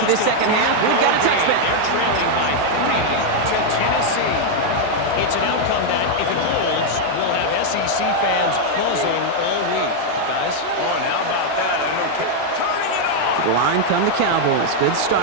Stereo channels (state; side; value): different; both; correlation 0.00